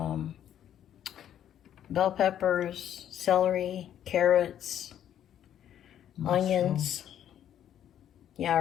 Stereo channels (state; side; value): quieter; right; 10.5 dB